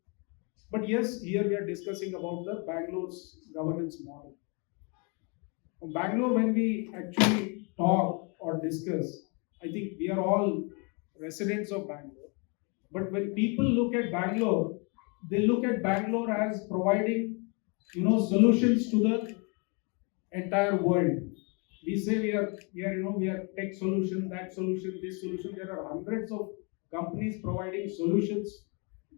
But yes, here we are discussing about the Bangalore's governance model. Bangalore, when we actually talk or discuss, I think we are all residents of Bangalore. But when people look at Bangalore, they look at Bangalore as providing, solutions to the entire world. We say we are tech solution, that solution, this solution. There are hundreds of companies providing solutions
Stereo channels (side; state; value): right; quieter; 33.7 dB